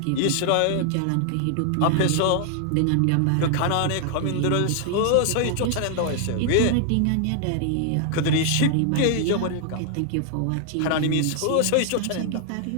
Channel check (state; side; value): different; both; correlation 0.00